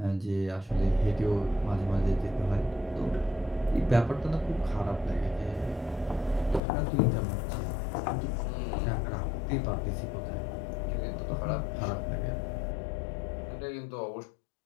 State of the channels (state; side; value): drops out; right; at 6.6 s